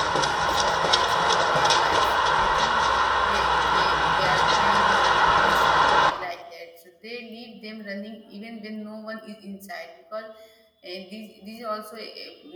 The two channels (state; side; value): identical; both; correlation 1.00